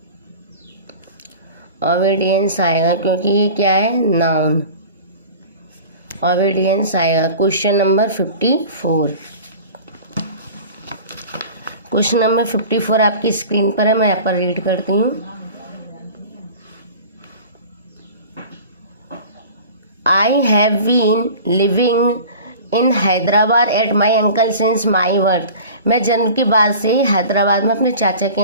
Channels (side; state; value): both; inverted; correlation -0.40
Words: ओबीडियंस आएगा, क्योंकि ये क्या है, नाउन, ओबीडियंस आएगा। क्वेश्चन नंबर 54, क्वेश्चन नंबर 54 आपकी स्क्रीन पर है, मैं यहाँ पर रीड करती हूँ। I have been living in Hyderabad at my uncle since my birth. मैं जन्म के बाद से ही हैदराबाद में अपने चाचा के